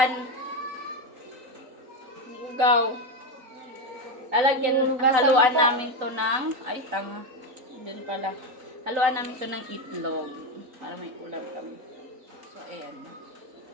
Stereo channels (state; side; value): late; left; 3.9 ms